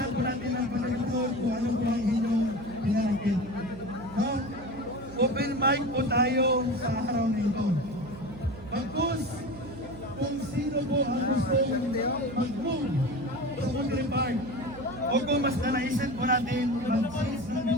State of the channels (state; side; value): noise; right; hum, 14 dB below the sound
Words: po natin ng panagutod kung ano po ang inyong pinanagit. No? Open mic po tayo sa araw na ito. Bagkus, kung sino po ang gustong mag-move sa Military Park, o kung mas nanaisip po natin, mag-change na